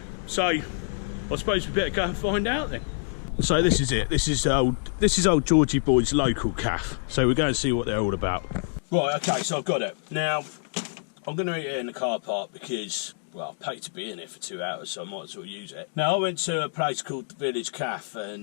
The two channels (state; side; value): silent; right; digital silence